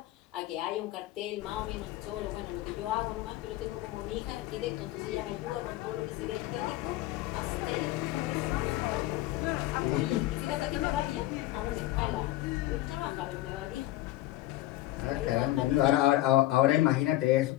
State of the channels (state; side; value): quieter; right; 16.0 dB